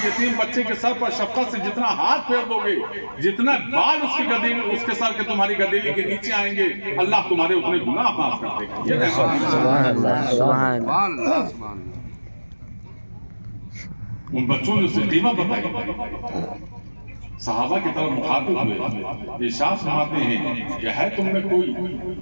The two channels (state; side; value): inverted; both; correlation -1.00